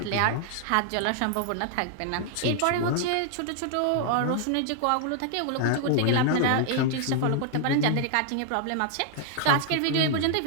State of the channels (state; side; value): different; both; correlation 0.00